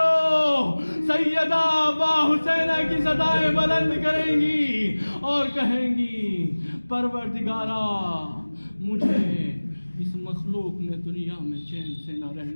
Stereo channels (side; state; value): both; inverted; correlation -1.00